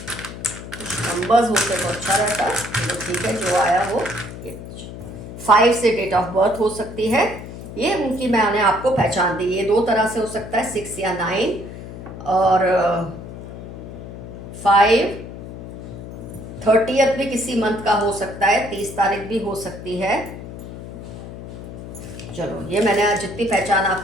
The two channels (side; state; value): left; noise; hum, 12 dB below the sound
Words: नंबर्स होते तो अच्छा रहता, तो ठीक है जो आया वो। ये 5 से डेट ऑफ बर्थ हो सकती है, ये उनकी मैंने आपको पहचान दी। ये दो तरह से हो सकता है, 6 या 9, और 5 30th भी किसी मंथ का हो सकता है, 30 तारीख भी हो सकती है। चलो ये मैंने आज जितनी पहचान